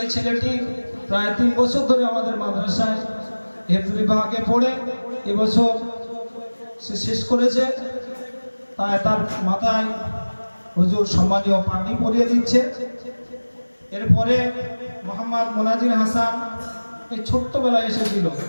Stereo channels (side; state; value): both; inverted; correlation -1.00